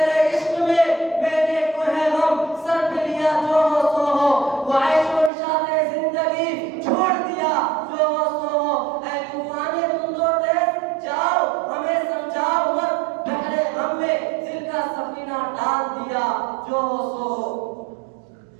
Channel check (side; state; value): left; drops out; at 5.3 s